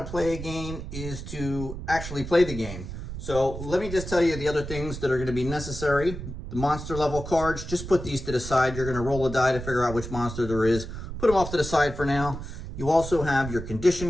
play a game is to actually play the game. So let me just tell you the other things that are going to be necessary. The monster level cards, just put these to the side. You're going to roll a die to figure out which monster there is. Put them off to the side for now. You also have your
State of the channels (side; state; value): right; noise; rumble, 8 dB below the sound